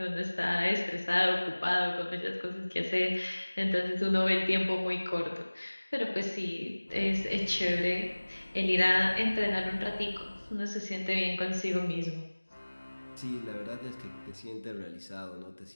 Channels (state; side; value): inverted; both; correlation -1.00